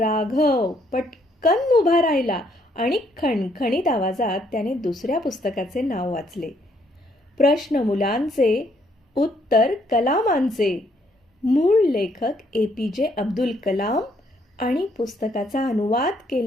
पटकन उभा राहिला आणि खणखणीत आवाजात त्याने दुसऱ्या पुस्तकाचे नाव वाचले. प्रश्न मुलांचे, उत्तर कलामांचे. मूळ लेखक APJ अब्दुल कलाम आणि पुस्तकाचा अनुवाद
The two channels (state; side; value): normal; both; correlation 0.69